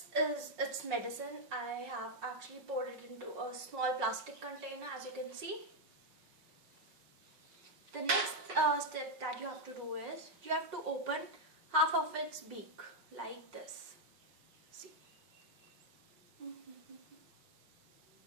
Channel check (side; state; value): left; late; 5.5 ms